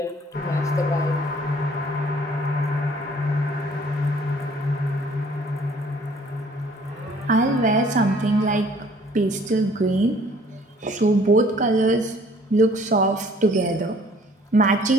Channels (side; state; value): both; normal; correlation 0.56